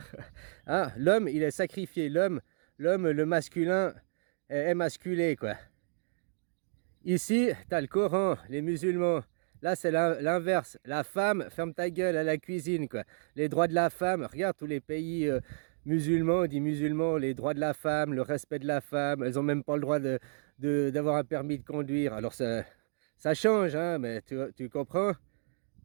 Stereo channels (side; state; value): left; silent; digital silence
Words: Ah, l'homme, il est sacrifié. L'homme, le masculin, est émasculé, quoi. Ici, tu as le Coran, les musulmans. Là, c'est l'inverse. La femme, ferme ta gueule à la cuisine, quoi. Les droits de la femme, regarde tous les pays musulmans, dit musulmans, les droits de la femme, le respect de la femme. Elles n'ont même pas le droit d'avoir un permis de conduire. Alors, ça change, hein, mais tu comprends?